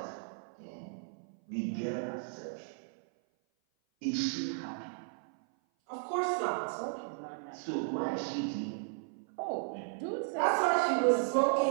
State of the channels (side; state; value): left; silent; 54 dB below the other